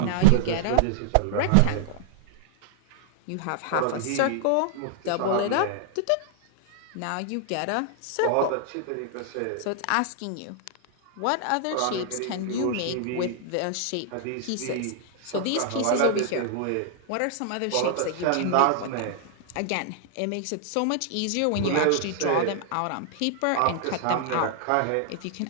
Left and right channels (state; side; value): different; both; correlation -0.01